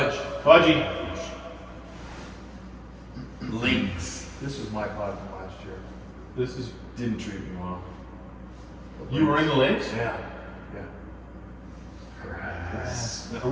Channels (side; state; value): both; identical; correlation 1.00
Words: Fudgy. Links. This was my pod from last year. This is. Didn't treat me well. You were in the links? Yeah. Are